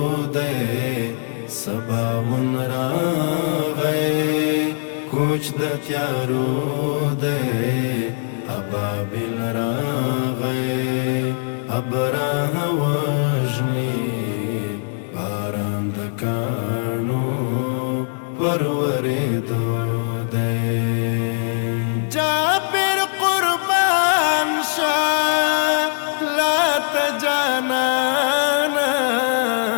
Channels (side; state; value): right; silent; 65 dB below the other